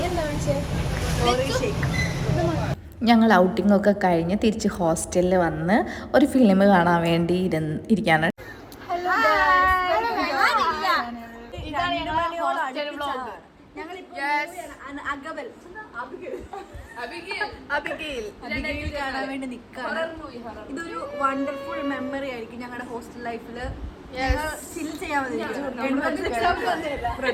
എന്താ വിളിച്ചേ? ഞങ്ങൾ ഔട്ടിങ്ങൊക്കെ കഴിഞ്ഞ് തിരിച്ച് ഹോസ്റ്റലിൽ വന്ന് ഒരു ഫിലിം കാണാൻ വേണ്ടി ഇരിക്കാണ്. അബിഗയിൽ കാണാൻ വേണ്ടി നിൽക്കാണ്. ഇതൊരു വണ്ടർഫുൾ മെമ്മറി ആയിരിക്കും ഞങ്ങളുടെ ഹോസ്റ്റൽ ലൈഫിൽ. ചിൽ ചെയ്യാൻ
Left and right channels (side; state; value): both; identical; correlation 1.00